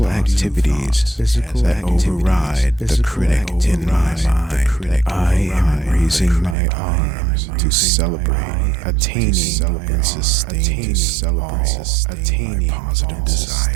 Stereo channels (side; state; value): left; drops out; at 6.6 s